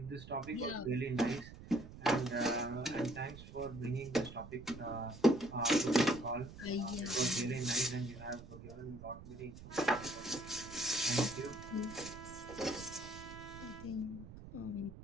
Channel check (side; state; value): right; noise; rumble, 14 dB below the sound